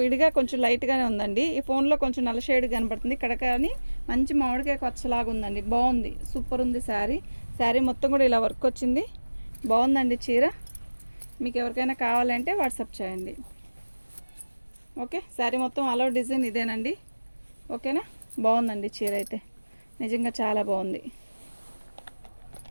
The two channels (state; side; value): inverted; both; correlation -1.00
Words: విడిగా కొంచెం లైట్గానే ఉందండి. ఈ ఫోన్లో కొంచెం నల్ల షేడ్ కనపడుతుంది. ఇక్కడ కానీ మంచి మామిడికాయ పచ్చలాగా ఉందండి. బాగుంది, సూపర్ ఉంది శారీ. శారీ మొత్తం కూడా ఇలా వర్క్ వచ్చింది. బాగుందండి చీర. మీకు ఎవరికైనా కావాలంటే వాట్సాప్ చేయండి. ఓకే, శారీ మొత్తం ఆల్ ఓవర్ డిజైన్ ఇదేనండి. ఓకేనా, బాగుందండి చీర అయితే, నిజంగా చాలా బాగుంది.